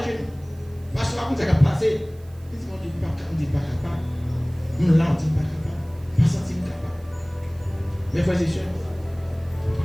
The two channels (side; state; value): right; noise; hiss, 28 dB below the sound